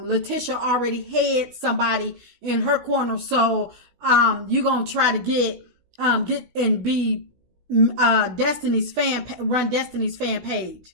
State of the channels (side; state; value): left; late; 16 ms